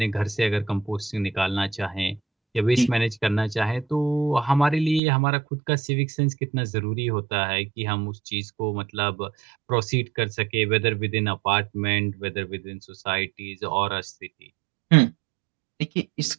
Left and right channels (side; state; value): left; drops out; at 5.0 s